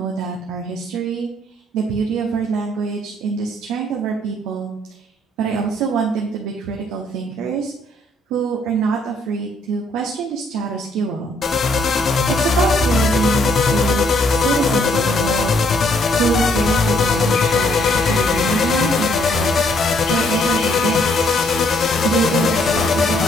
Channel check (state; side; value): normal; both; correlation 0.68